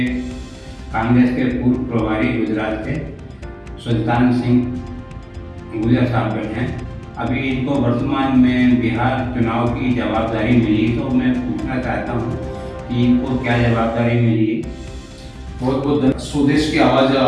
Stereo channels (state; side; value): identical; both; correlation 1.00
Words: कांग्रेस के पूर्व प्रभारी गुजरात के सुल्तान सिंह गुजर साहब बैठे हैं। अभी इनको वर्तमान में बिहार चुनाव की जवाबदारी मिली, तो मैं पूछना चाहता हूँ कि इनको क्या जवाबदारी मिली। बहुत बहुत स्वदेश की आवाज़ है